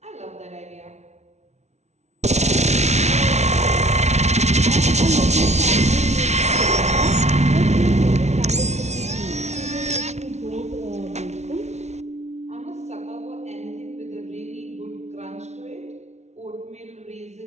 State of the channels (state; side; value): late; left; 0.32 ms